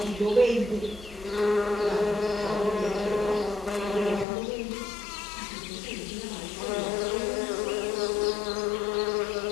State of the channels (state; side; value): drops out; right; at 4.2 s